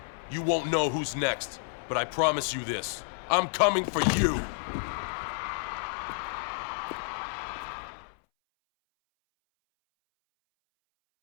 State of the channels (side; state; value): right; silent; 58 dB below the other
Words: You won't know who's next, but I promise you this. I'm coming for you.